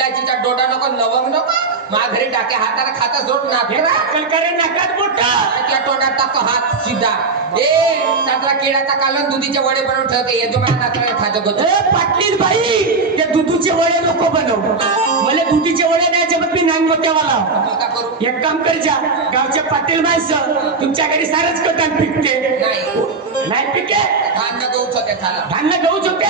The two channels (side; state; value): left; quieter; 4.2 dB